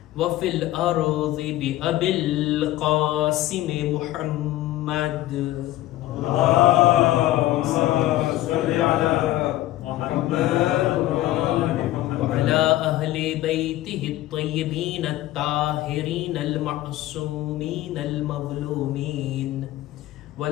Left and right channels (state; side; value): quieter; right; 15.3 dB